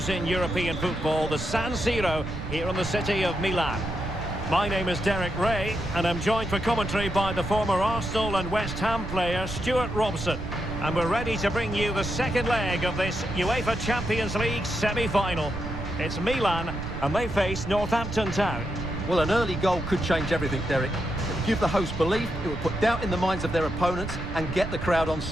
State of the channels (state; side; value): noise; right; rumble, 8 dB below the sound